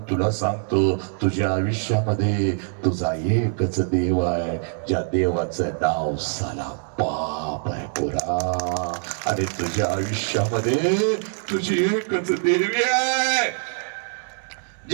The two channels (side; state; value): left; silent; 63 dB below the other